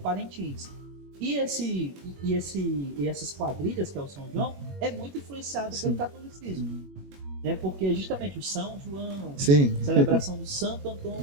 E essas quadrilhas, que é o São João, é muito influenciado pelo catolicismo, né? Porque justamente o São João, celebração do Santo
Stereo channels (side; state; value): left; late; 21 ms